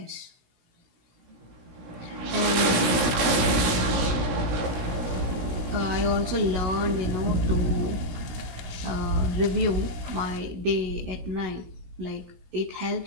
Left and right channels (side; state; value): left; late; 17 ms